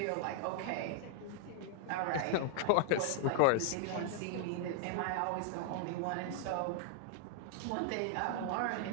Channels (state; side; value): different; both; correlation 0.00